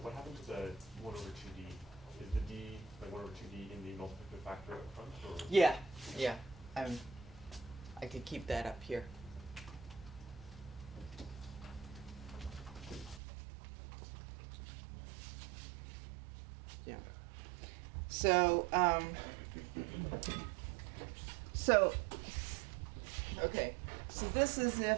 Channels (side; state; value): left; drops out; at 13.2 s